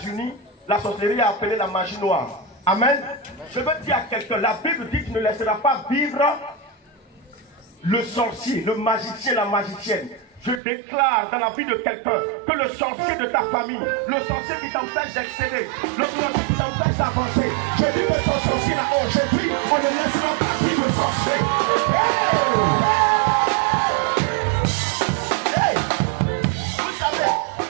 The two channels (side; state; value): left; drops out; at 10.6 s